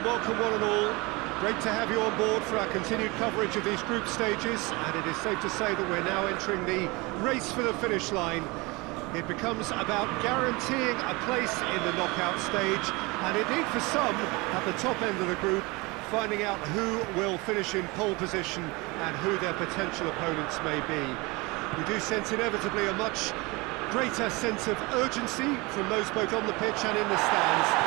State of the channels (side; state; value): left; quieter; 25.0 dB